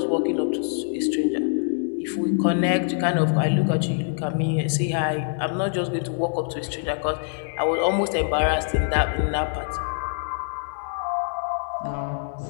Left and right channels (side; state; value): right; silent; digital silence